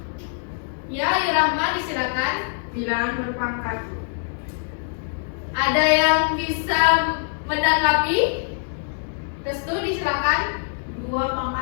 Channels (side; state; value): right; silent; digital silence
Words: Ya, Irahma disilakan. Bilangan berpangkat. Ada yang bisa menanggapi? Restu disilakan. 2